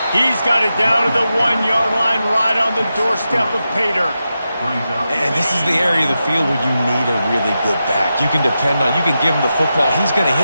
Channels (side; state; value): both; inverted; correlation -0.90